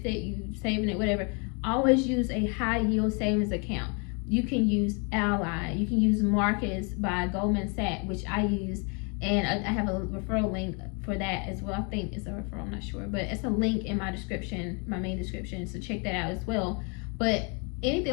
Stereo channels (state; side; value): quieter; right; 34.8 dB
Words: it, you saving it, whatever, always use a high yield savings account. You can use Ally, you can use Marcus by Goldman Sachs, which I use, and I have a referral link for that as well. I think it's a referral, I'm not sure, but it's a link in my description, my main description, so check that out as well. But